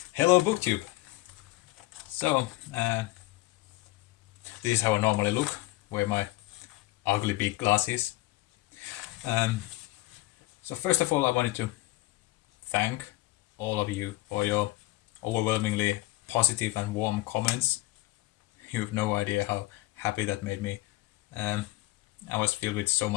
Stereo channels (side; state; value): right; quieter; 19.2 dB